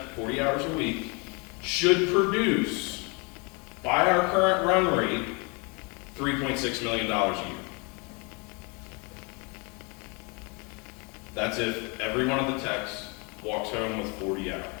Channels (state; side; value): quieter; right; 31.5 dB